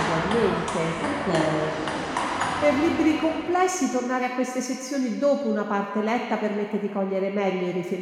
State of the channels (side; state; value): both; identical; correlation 1.00